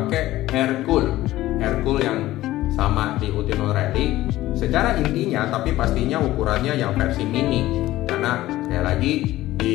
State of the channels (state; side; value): quieter; right; 15.9 dB